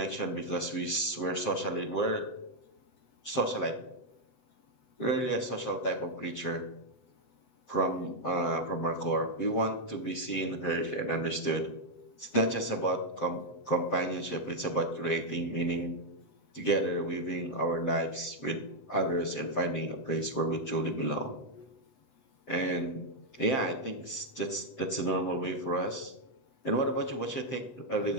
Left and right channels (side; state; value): right; late; 7.5 ms